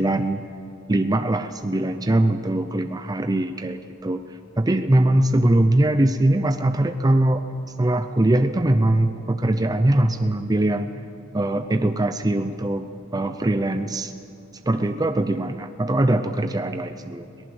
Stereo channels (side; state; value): both; normal; correlation 0.89